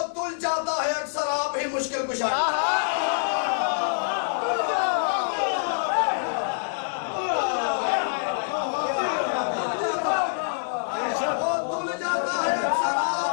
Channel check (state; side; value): silent; right; digital silence